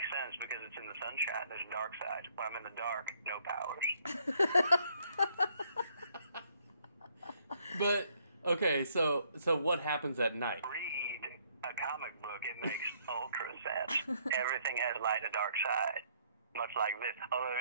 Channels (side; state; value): both; inverted; correlation -0.67